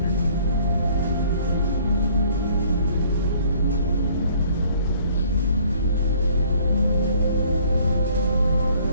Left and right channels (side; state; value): both; inverted; correlation -0.57